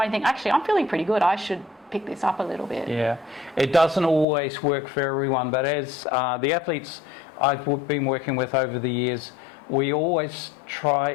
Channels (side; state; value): right; drops out; at 4.2 s